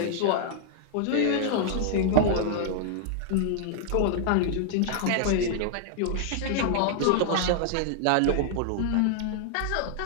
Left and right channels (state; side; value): different; both; correlation 0.00